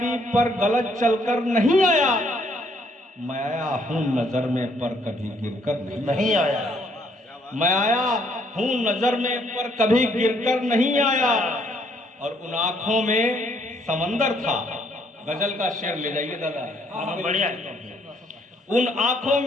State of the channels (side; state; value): both; normal; correlation 0.68